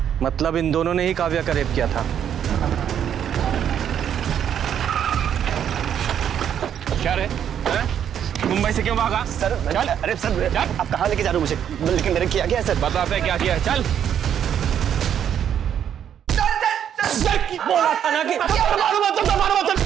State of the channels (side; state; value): left; quieter; 9.2 dB